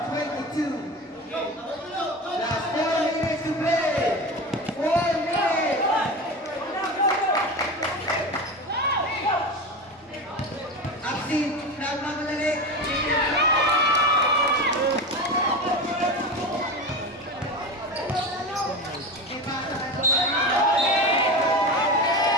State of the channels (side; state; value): both; normal; correlation 0.25